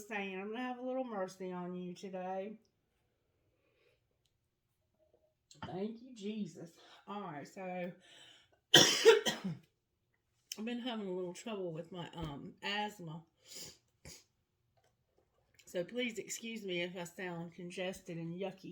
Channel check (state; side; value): identical; both; correlation 1.00